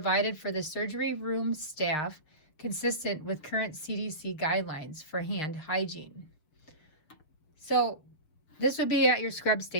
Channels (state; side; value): late; right; 6.5 ms